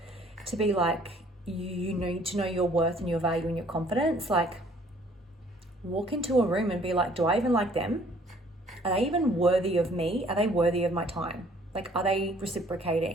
to be like, you need to know your worth and your value and your confidence. Like, walk into a room and be like, do I even like them? Are they even worthy of me? Are they worthy of my time? Like, are they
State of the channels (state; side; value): normal; both; correlation 0.59